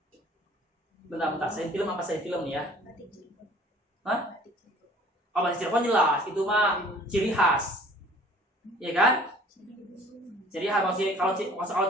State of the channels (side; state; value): both; normal; correlation 0.51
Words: Bentar. Saya film apa saya film nih ya? Hah? Oh, Batik Cirebon jelas. Itu mah ciri khas. Iya kan? Ciri khas. Kalau